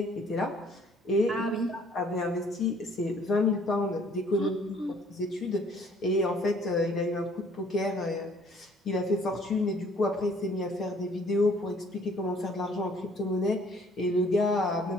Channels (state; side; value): normal; both; correlation 0.59